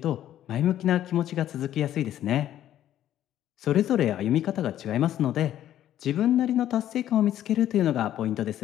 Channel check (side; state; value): right; quieter; 11.9 dB